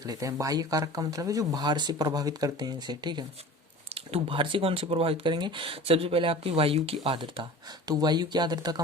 लेते हैं। बाह्य कारक का मतलब है जो बाहर से प्रभावित करते हैं इसे। ठीक है, तो बाहर से कौन से प्रभावित करेंगे? सबसे पहले आपकी वायु की आर्द्रता। तो वायु की आर्द्रता का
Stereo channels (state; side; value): normal; both; correlation 0.39